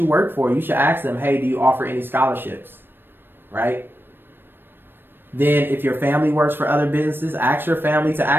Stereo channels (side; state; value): left; late; 0.097 ms